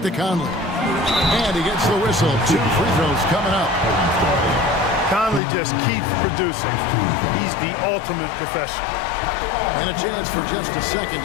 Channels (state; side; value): drops out; right; at 5.4 s